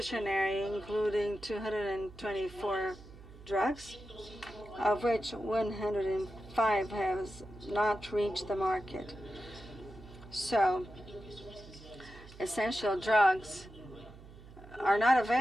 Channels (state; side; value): noise; right; hum, 19 dB below the sound